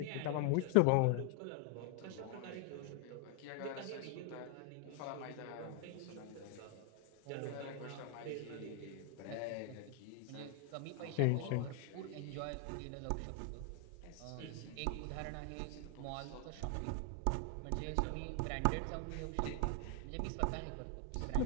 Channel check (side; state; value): both; different; correlation 0.00